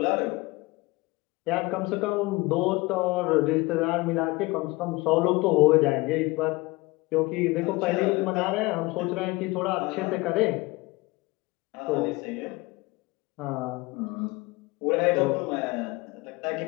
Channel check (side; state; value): right; quieter; 22.7 dB